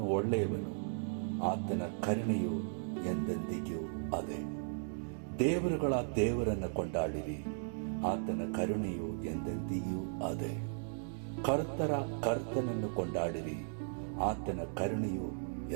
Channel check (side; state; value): left; silent; digital silence